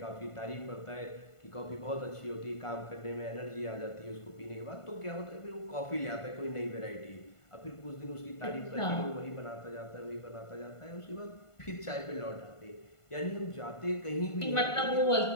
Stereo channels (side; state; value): right; late; 1.5 ms